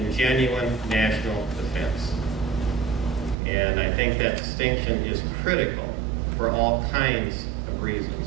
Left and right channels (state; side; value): drops out; left; at 3.4 s